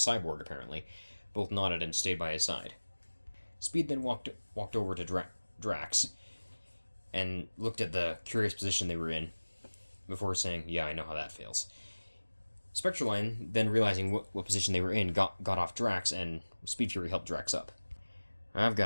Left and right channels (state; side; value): inverted; both; correlation -1.00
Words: apparently, both nodded and stayed by his side. Speed then walked over to Drax and looked at the curious position they were in, before saying, "Yeah, I know how that feels." Spectraline, then realizing what position they were in, got off Drax, and Speed Fury helped Drax up. I've